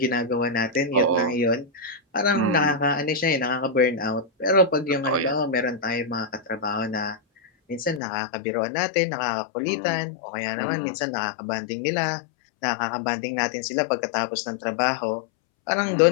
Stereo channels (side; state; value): right; drops out; at 8.0 s